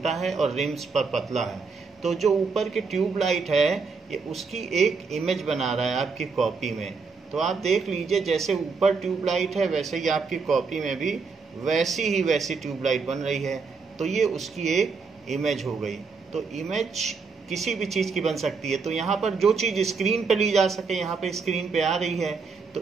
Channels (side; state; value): left; quieter; 4.8 dB